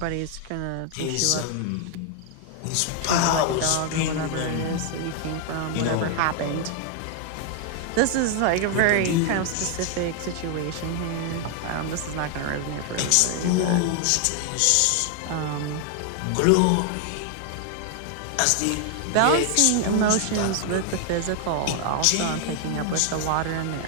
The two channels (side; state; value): both; different; correlation 0.00